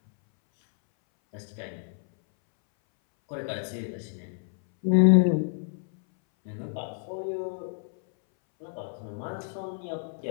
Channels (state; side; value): silent; right; 59 dB below the other